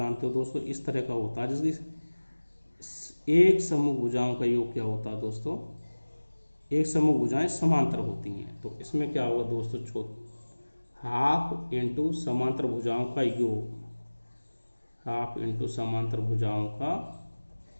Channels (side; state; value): both; inverted; correlation -1.00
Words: हो दोस्तों इस तरह का होता है, जिसकी एक समूह भुजाओं का योग क्या होता है दोस्तों, एक समूह भुजाएं समांतर होती हैं। तो इसमें क्या होगा दोस्तों, हाफ इंटू समांतर भुजाओं का योग, हाफ इंटू समांतर भुजाओं का